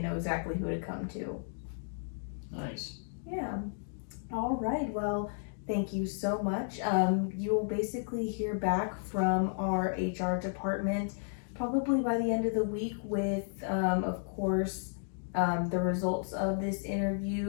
know exactly who to come to. Nice. Yeah. All right, well, thank you so much. You will basically hear back from our HR department probably by the end of the week with, of course, the results of this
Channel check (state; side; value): silent; right; digital silence